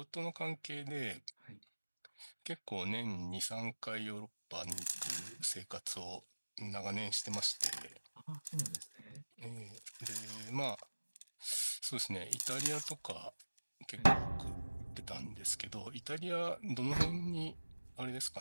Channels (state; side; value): inverted; both; correlation -1.00